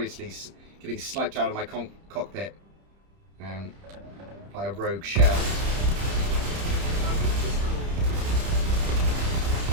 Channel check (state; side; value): late; left; 30 ms